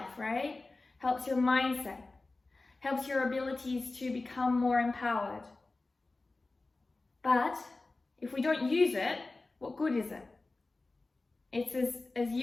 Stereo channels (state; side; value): quieter; right; 3.3 dB